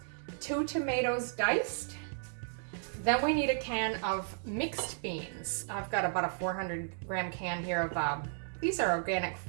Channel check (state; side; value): silent; left; 55 dB below the other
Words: 2 tomatoes diced. Then we need a can of mixed beans. I've got about a 400 gram can here of, these are organic